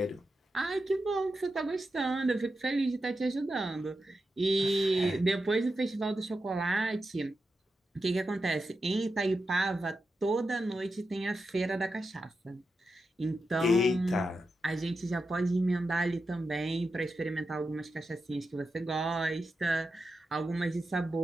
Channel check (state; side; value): normal; both; correlation 0.89